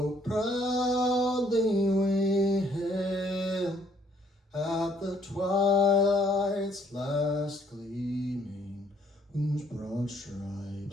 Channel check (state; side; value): normal; both; correlation 0.65